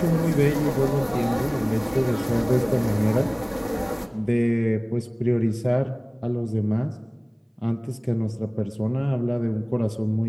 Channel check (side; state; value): both; identical; correlation 1.00